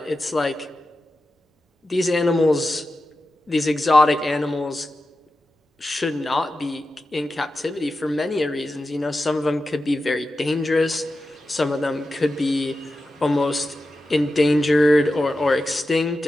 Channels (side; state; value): both; normal; correlation 0.92